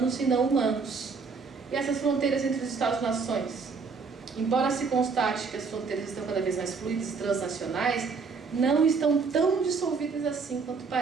e não humanos. E essas fronteiras entre os Estados-nações? Embora se constate que as fronteiras estão cada vez mais fluidas e transnacionais, não estão tão dissolvidas assim quanto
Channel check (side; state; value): left; quieter; 4.9 dB